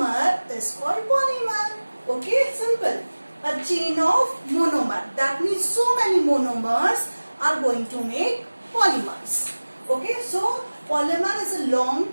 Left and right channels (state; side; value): inverted; both; correlation -1.00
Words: is called polymer. Okay, simple. A chain of monomer. That means so many monomers are going to make polymers. Okay, so polymer is a long